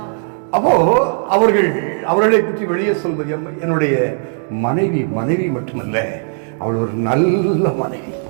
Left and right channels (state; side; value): silent; left; digital silence